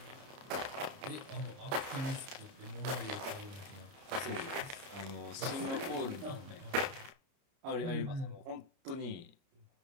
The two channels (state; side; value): late; left; 30 ms